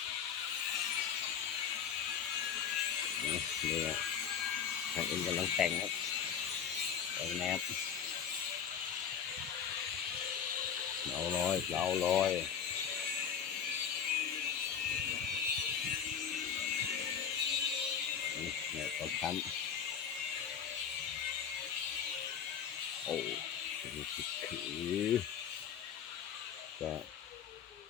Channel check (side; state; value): right; quieter; 7.9 dB